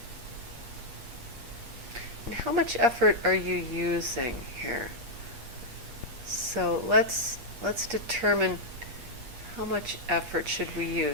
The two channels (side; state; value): left; late; 8.3 ms